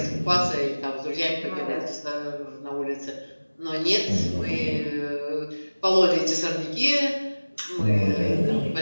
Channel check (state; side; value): inverted; both; correlation -1.00